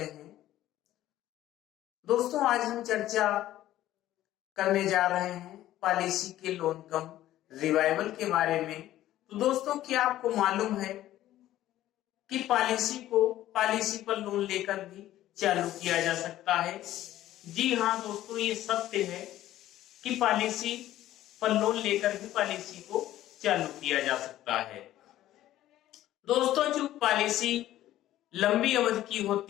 हैं। दोस्तों आज हम चर्चा करने जा रहे हैं पॉलिसी के लोन कम रिवाइवल के बारे में। तो दोस्तों क्या आपको मालूम है कि पॉलिसी पर लोन लेकर भी चालू किया जा सकता है? जी हाँ दोस्तों, ये सत्य है कि पॉलिसी पर लोन लेकर भी पॉलिसी को चालू किया जा सकता है। दोस्तों जो पॉलिसी लंबी अवधि की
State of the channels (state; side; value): quieter; right; 13.8 dB